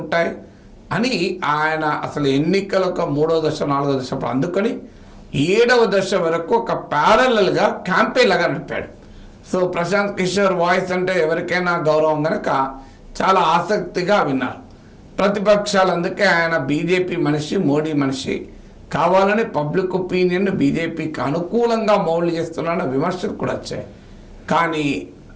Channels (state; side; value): identical; both; correlation 1.00